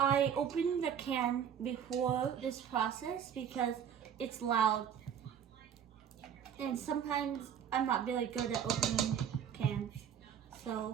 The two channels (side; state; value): left; quieter; 8.5 dB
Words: open the can before this process because it's loud. And sometimes I'm not really good at opening cans.